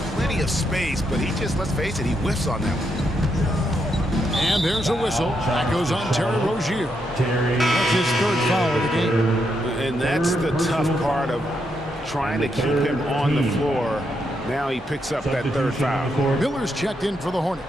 Plenty of space, but he just, let's face it, he whiffs on that one. And there's a whistle. That goes on Terry Rozier. That's his 3rd foul of the game. And that's the tough part of trying to keep him on the floor. Now he picks up that 3rd foul. Miller's checked in for the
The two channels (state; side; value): normal; both; correlation 0.80